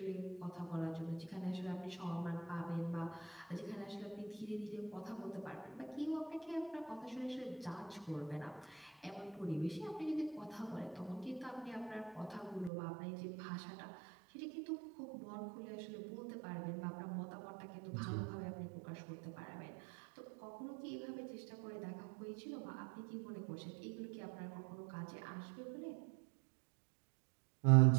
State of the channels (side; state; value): left; drops out; at 12.7 s